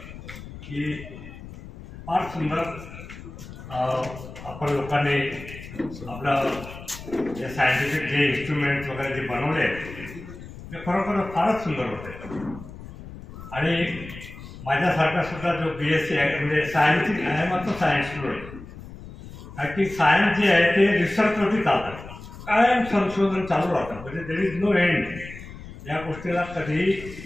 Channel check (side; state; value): left; noise; rumble, 14 dB below the sound